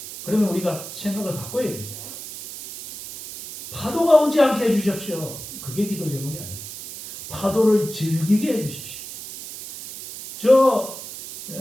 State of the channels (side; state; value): right; noise; hiss, 11 dB below the sound